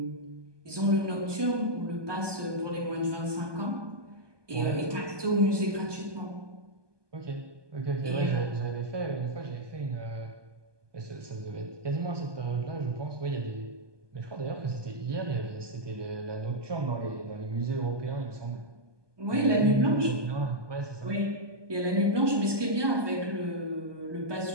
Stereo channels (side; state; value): left; late; 1.2 ms